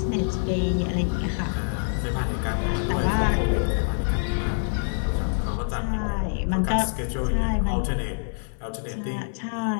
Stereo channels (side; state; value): right; silent; 57 dB below the other